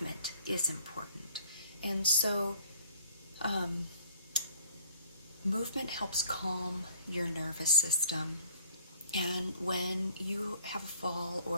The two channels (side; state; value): both; inverted; correlation -0.56